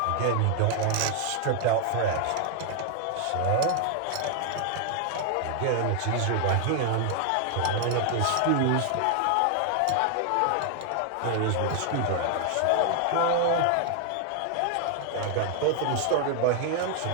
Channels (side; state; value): both; different; correlation 0.00